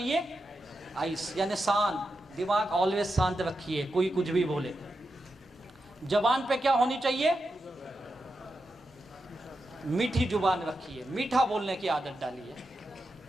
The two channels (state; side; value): normal; both; correlation 0.88